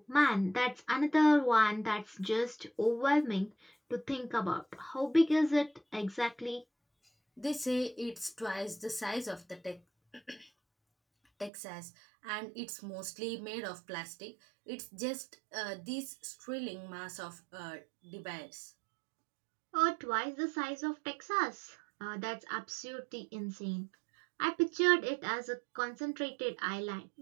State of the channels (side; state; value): left; drops out; at 11.5 s